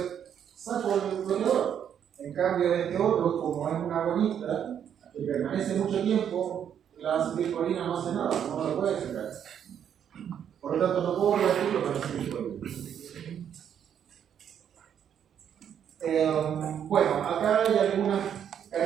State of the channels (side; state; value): left; quieter; 8.9 dB